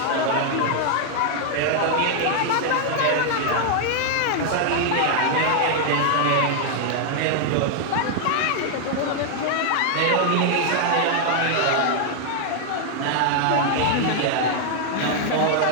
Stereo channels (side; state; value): both; different; correlation 0.00